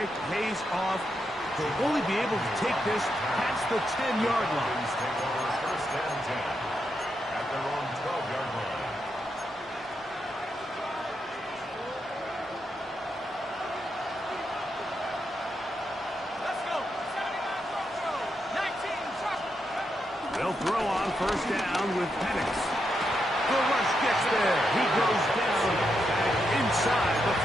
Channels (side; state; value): both; normal; correlation 0.83